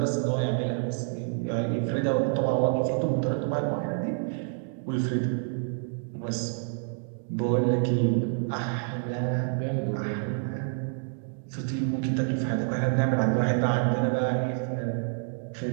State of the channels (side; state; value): left; silent; 59 dB below the other